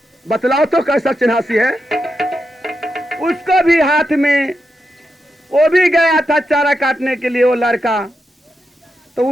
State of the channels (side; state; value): both; normal; correlation 0.86